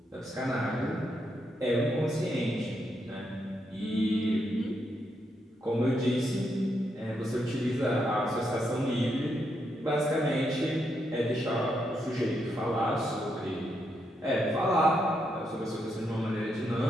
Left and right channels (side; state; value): both; normal; correlation 0.80